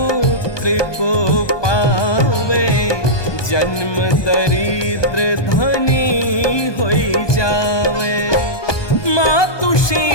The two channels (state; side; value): late; right; 1.2 ms